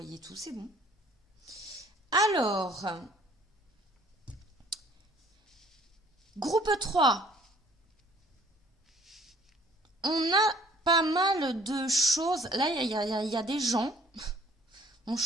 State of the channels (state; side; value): normal; both; correlation 0.57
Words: tout, c'est bon. Alors, groupe 3. On a pas mal de choses. Là, il y a des gens. On